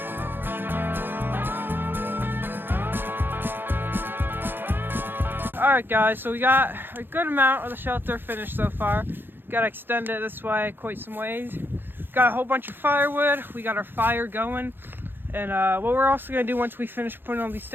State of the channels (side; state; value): left; late; 0.099 ms